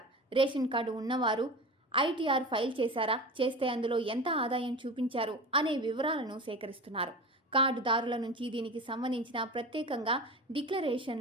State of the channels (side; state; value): both; normal; correlation 0.31